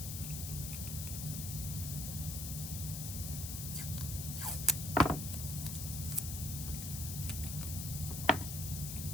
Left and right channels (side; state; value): left; noise; hiss, 5 dB below the sound